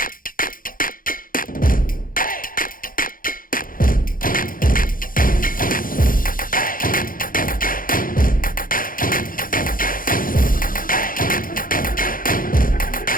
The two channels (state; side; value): late; right; 0.40 ms